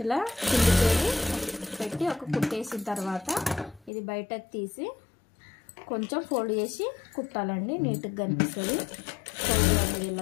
ఇలా కిందికి వెళ్ళి పెట్టి ఒక కుట్టేసిన తర్వాత ఇది బయటకు తీసి కొంచెం ఫోల్డ్ చేసి కుట్టాలండి. నీట్గా కనిపిస్తుంది, ఫోల్డ్ అనేది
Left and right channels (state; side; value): drops out; right; at 3.9 s